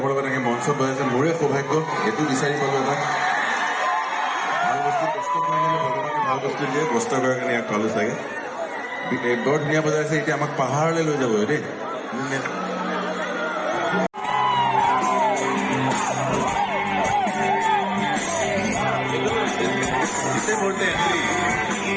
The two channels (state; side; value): identical; both; correlation 1.00